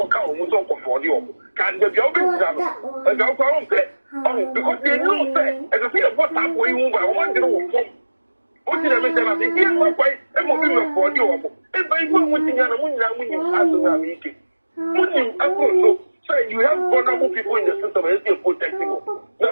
who's on for you. Can the job is done? And I'll go on there. Oh, because they know that, as I say, what's up where you move, I want to know what did I make them? I think, here's my wife, and what will for you. And by one thing, and when you ask them, meeting. When you also say you have vulnerable people in the system, and you're protecting them. Now,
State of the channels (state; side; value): inverted; both; correlation -1.00